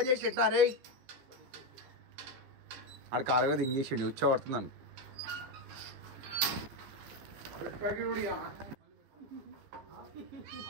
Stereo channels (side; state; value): left; late; 15 ms